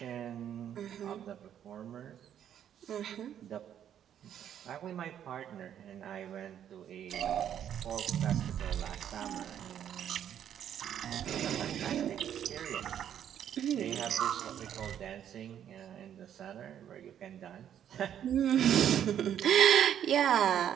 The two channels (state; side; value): quieter; left; 9.8 dB